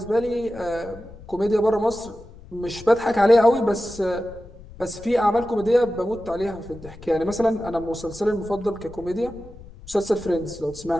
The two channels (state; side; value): noise; left; rumble, 18 dB below the sound